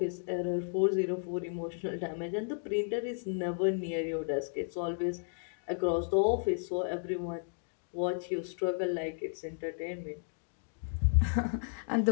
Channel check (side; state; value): right; silent; digital silence